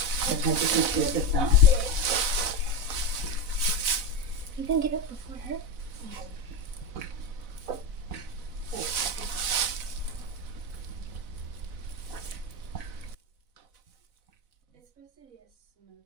Sometimes you can feel the thumb. You can get up before her. It's supposed to be a smoky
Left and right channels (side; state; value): left; late; 4.0 ms